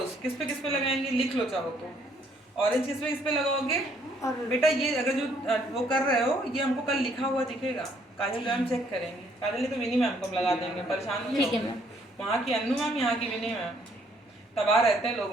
किस पे लगाएंगे, लिख लो चाहो तो। ऑरेंज किस पे लगाओगे, और बेटा ये अगर जो वो कर रहे हो, ये हमको कल लिखा हुआ दिखेगा, काजल मैम चेक करेंगे। काजल ने तो विनी मैम को हम लगा देंगे, परेशान नहीं ठीक है होंगे। मैम। वहाँ की अन्नू मैम, यहाँ की विनी मैम, तबाह रहते हैं लोग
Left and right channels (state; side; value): normal; both; correlation 0.66